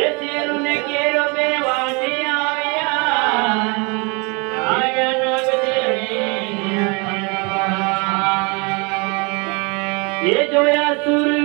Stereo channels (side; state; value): left; quieter; 30.6 dB